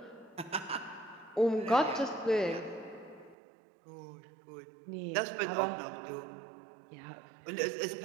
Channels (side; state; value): left; drops out; at 3.4 s